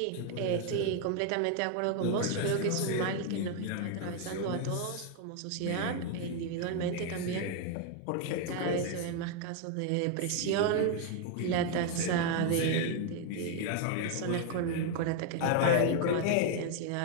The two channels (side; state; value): both; different; correlation 0.01